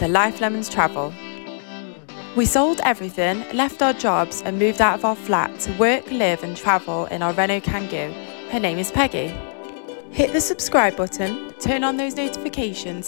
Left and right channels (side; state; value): right; silent; 65 dB below the other